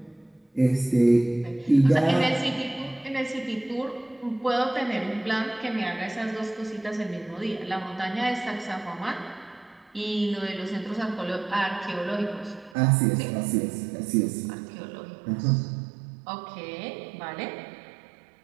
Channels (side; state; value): left; drops out; at 12.8 s